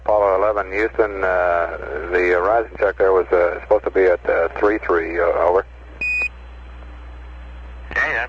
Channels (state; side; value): identical; both; correlation 1.00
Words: 11, Houston, the horizon check there was supposed to be at 33, over. Okay, that